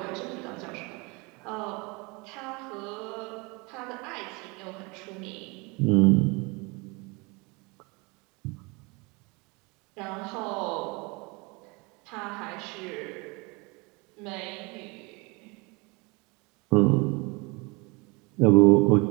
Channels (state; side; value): quieter; left; 27.7 dB